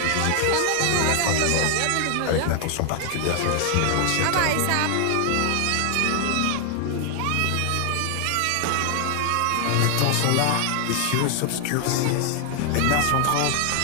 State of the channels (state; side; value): different; both; correlation 0.00